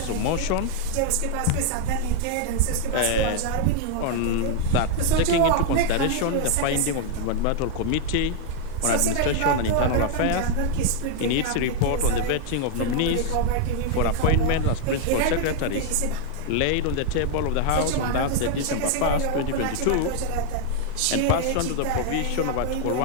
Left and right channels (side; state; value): both; different; correlation 0.00